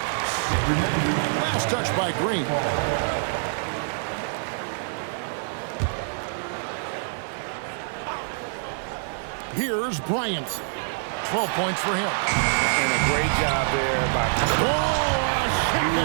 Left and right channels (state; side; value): silent; left; 61 dB below the other